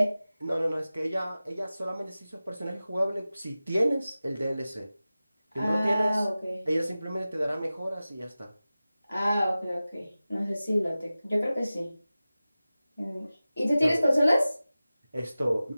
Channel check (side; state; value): both; inverted; correlation -0.96